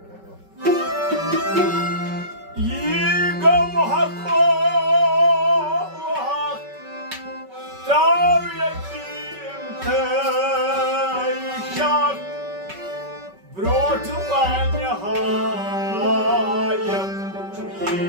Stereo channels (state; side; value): late; left; 5.3 ms